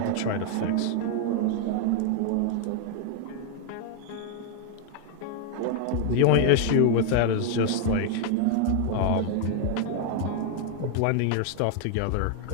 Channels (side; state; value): both; different; correlation 0.00